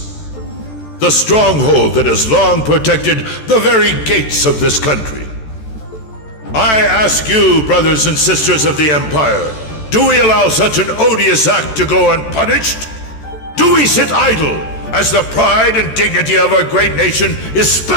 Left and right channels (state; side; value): late; right; 14 ms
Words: the stronghold that has long protected the very gates of this country. I ask you, brothers and sisters of the Empire, do we allow such an odious act to go unpunished? Do we sit idle as the pride and dignity of our great nation is